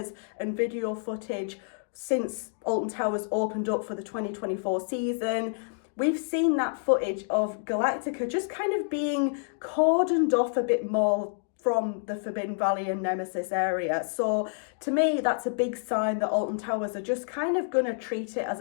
and video footage since Alton Towers opened up for the 2024 season. We've seen that footage of Galactica just kind of being cordoned off a bit more from the Forbidden Valley and Nemesis area. So to me, that's a big sign that Alton Towers are just kind of going to treat it as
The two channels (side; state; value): right; silent; digital silence